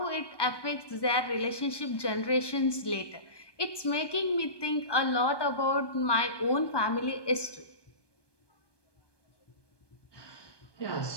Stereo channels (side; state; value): right; late; 1.2 ms